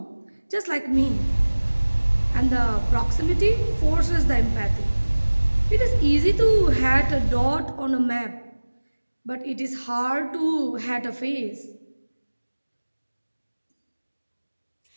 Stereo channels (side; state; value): both; inverted; correlation -1.00